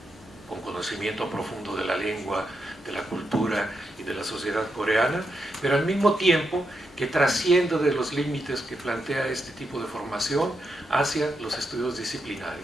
con conocimiento profundo de la lengua, de la cultura y de la sociedad coreana, pero al mismo tiempo que trascienda de los límites que plantea este tipo de formación hacia los estudios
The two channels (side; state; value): both; normal; correlation 0.84